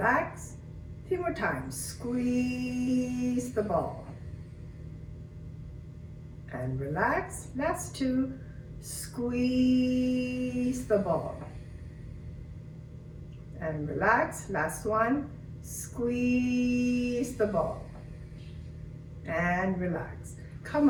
3 more times. Squeeze the ball. And relax. Last 2. Squeeze the ball. And relax. Last 1. Squeeze the ball. And relax. Come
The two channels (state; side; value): identical; both; correlation 1.00